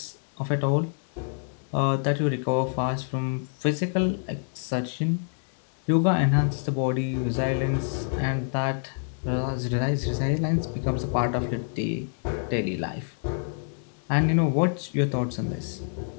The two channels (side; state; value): right; silent; digital silence